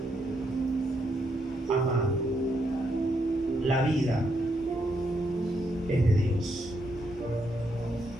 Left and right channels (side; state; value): both; normal; correlation 0.78